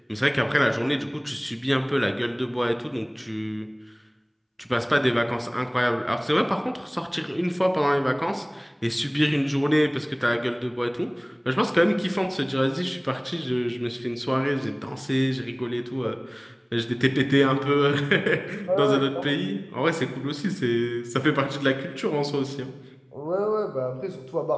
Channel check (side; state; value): both; identical; correlation 1.00